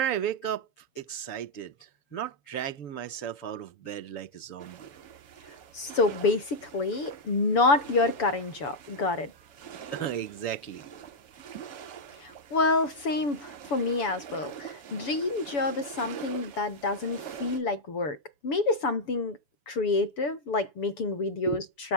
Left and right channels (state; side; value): late; right; 7.0 ms